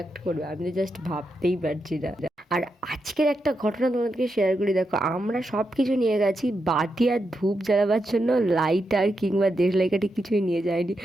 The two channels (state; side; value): normal; both; correlation 0.85